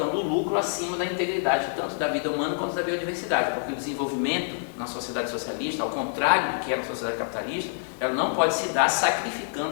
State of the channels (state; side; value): silent; right; digital silence